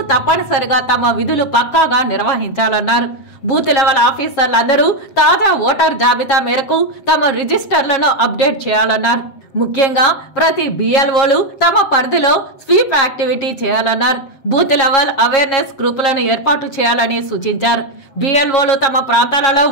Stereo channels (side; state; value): right; late; 7.6 ms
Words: తప్పనిసరిగా తమ విధులు పక్కాగా నిర్వహించాలన్నారు. బూత్ లెవెల్ ఆఫీసర్లందరూ తాజా ఓటర్ జాబితా మేరకు తమ రిజిస్టర్లను అప్డేట్ చేయాలన్నారు. ముఖ్యంగా ప్రతి బిఎల్ఓలు తమ పరిధిలో స్వీప్ యాక్టివిటీ చేయాలన్నారు. బూత్ లెవెల్ అవేర్నెస్ గ్రూపులను ఏర్పాటు చేయాలని సూచించారు. బిఎల్ఓలు తమ ప్రాంతాలలో